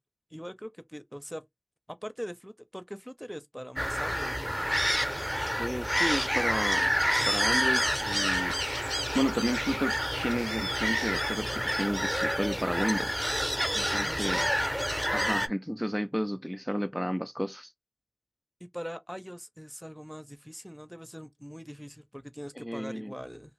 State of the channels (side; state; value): both; identical; correlation 1.00